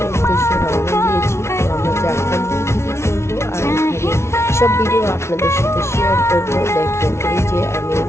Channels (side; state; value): right; late; 0.13 ms